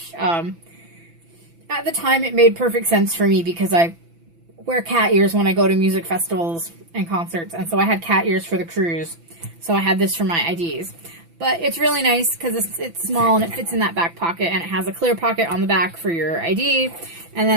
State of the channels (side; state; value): left; late; 6.0 ms